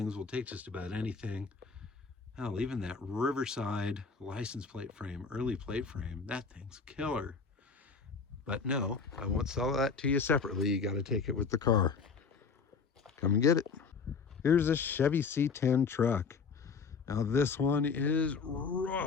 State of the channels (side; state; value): right; quieter; 5.2 dB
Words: We'll take just about anything. Hell, even that Riverside license plate frame, early plate frame, that thing's killer. But no, I won't sell that to you separately. You got to take it with the car. Come and get it. Here's a Chevy C10 Truck. Now this one is